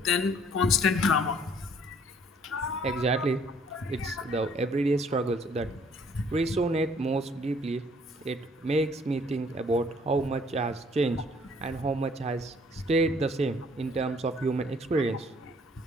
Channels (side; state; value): both; normal; correlation 0.60